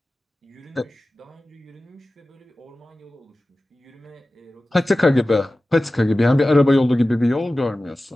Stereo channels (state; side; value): normal; both; correlation 0.96